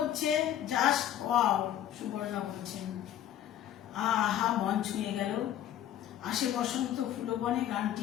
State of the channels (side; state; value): right; quieter; 11.3 dB